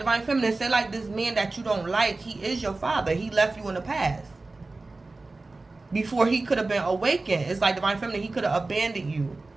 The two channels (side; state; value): left; quieter; 3.4 dB